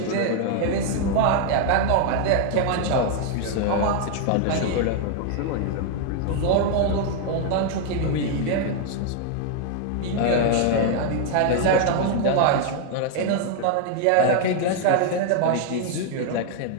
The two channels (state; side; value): different; both; correlation 0.00